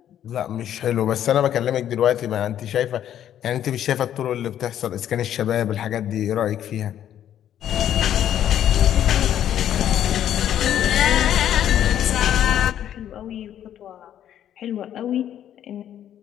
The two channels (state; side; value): quieter; right; 10.7 dB